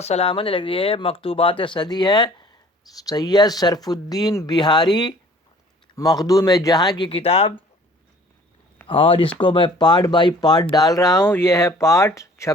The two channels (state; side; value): normal; both; correlation 0.52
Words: سلام علیک. یہ مکتوبات صدی ہے، سید شرف الدین بہاری مخدوم جہاں کی کتاب، اور اس کو میں پارٹ بائی پارٹ ڈال رہا ہوں. یہ ہے پارٹ